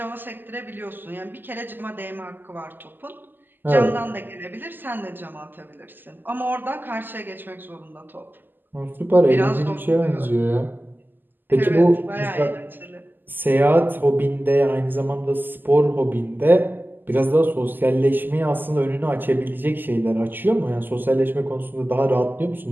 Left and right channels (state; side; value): late; left; 0.090 ms